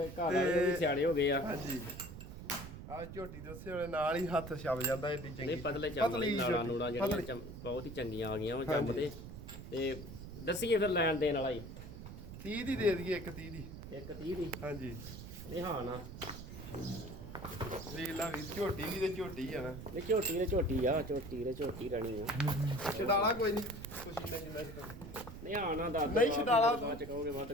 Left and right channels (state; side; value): noise; right; rumble, 11 dB below the sound